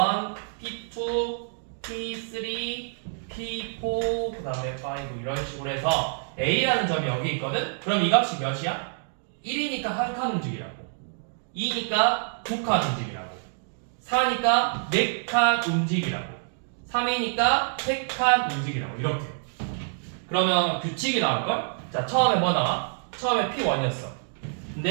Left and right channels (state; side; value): silent; left; 60 dB below the other